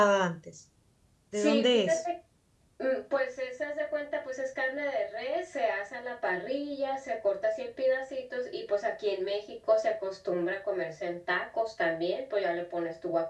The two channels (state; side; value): identical; both; correlation 1.00